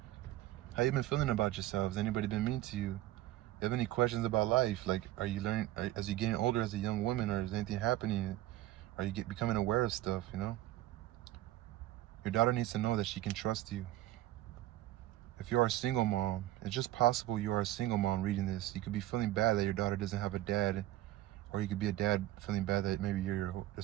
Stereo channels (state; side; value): quieter; left; 15.1 dB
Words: How you been feeling about yourself? Has anybody been mean to you? You have any questions about life? Like, are you learning, as you're getting older as a young woman, or is anything happening? Are you becoming aware of stuff, you know? Your daughter needs to know that she can trust you. If you are a single mom, it's just possible you are a single mom reading this. You could be feeling bad that your daughter doesn't have a dad, or you could be a dad feeling bad that maybe you're